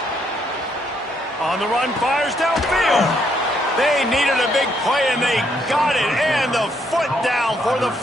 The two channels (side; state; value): both; normal; correlation 0.73